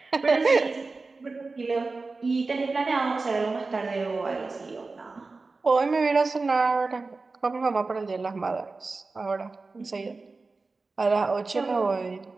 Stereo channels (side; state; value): left; quieter; 3.8 dB